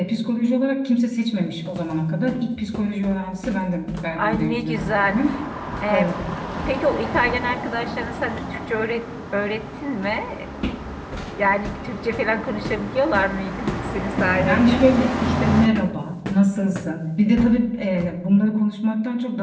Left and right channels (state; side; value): identical; both; correlation 1.00